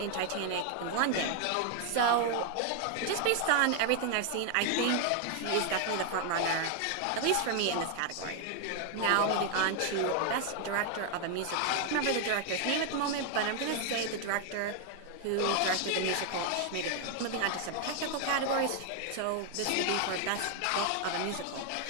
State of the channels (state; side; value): different; both; correlation 0.00